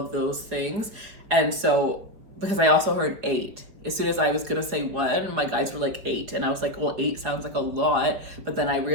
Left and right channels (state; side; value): late; left; 4.9 ms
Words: those things. And so, because I also heard 8. As soon as I was gonna say 1, my guys were like 8, and I was like, well, 8 sounds like a lot. But then I